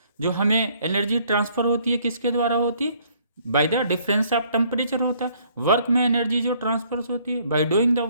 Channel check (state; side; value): inverted; both; correlation -0.63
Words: जो हमें एनर्जी ट्रांसफर होती है किसके द्वारा होती है, by the difference of temperature होता है। वर्क में एनर्जी जो ट्रांसफर होती है बाय डूइंग द